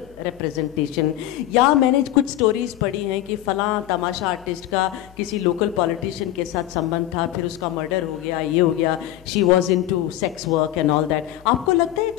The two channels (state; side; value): quieter; right; 13.6 dB